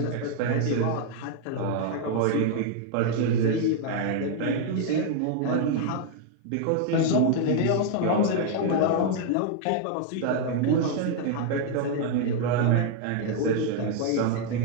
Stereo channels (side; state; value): both; different; correlation 0.00